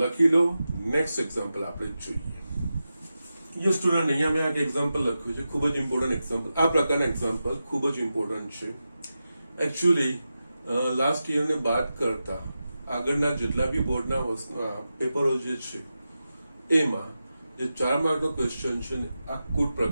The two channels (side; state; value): both; inverted; correlation -0.91